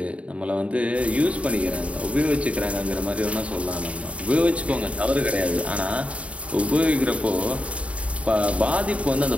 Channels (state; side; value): late; left; 0.064 ms